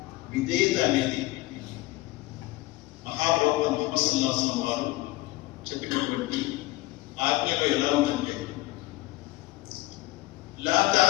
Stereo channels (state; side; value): quieter; right; 19.6 dB